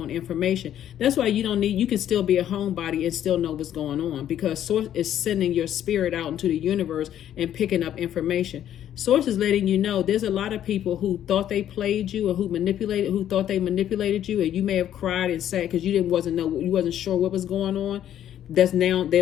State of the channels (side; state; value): right; quieter; 10.9 dB